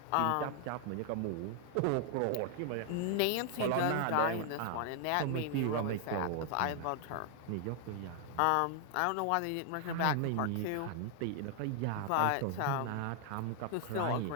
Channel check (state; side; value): different; both; correlation 0.00